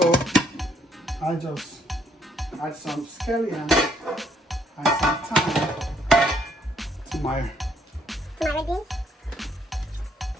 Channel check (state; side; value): normal; both; correlation 0.69